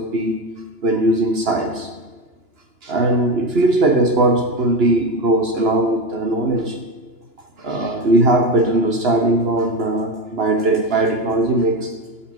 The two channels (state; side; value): late; left; 2.9 ms